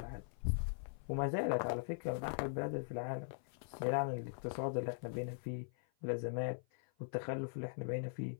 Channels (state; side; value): silent; right; 50 dB below the other